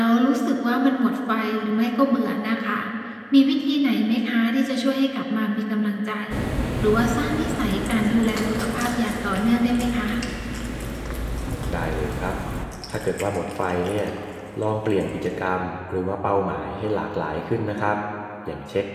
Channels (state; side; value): identical; both; correlation 1.00